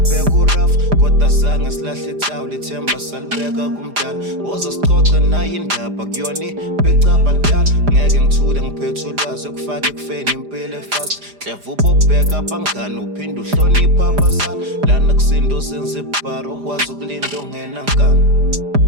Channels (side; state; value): left; late; 4.9 ms